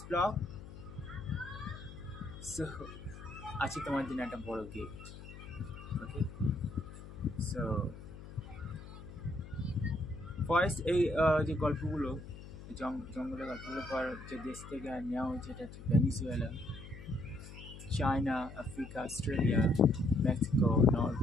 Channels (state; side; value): noise; left; hum, 14 dB below the sound